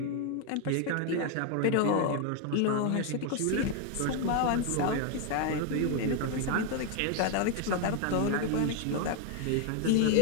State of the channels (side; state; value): both; different; correlation 0.01